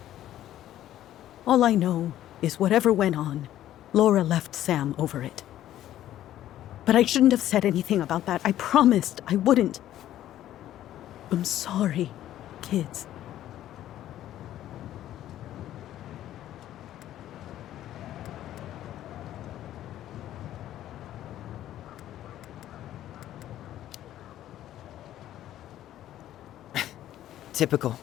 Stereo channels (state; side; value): quieter; right; 12.7 dB